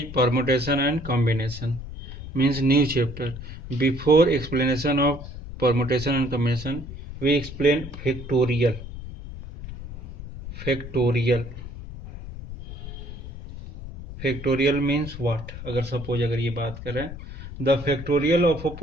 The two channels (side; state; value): left; noise; rumble, 11 dB below the sound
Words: permutation and combination, means new chapter. Before explanation of permutation and combination, we explain factorial. Factorial. Factorial means what? अगर suppose अगर ये बात करें, the factorial of a